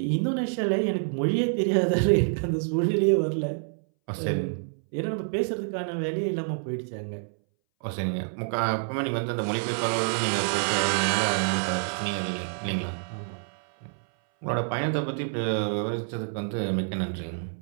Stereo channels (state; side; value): silent; left; 60 dB below the other